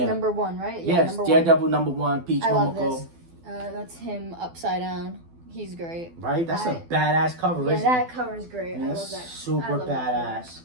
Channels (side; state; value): left; late; 12 ms